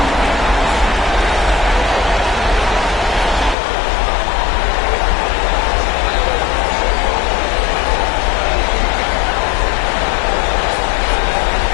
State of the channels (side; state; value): right; drops out; at 3.6 s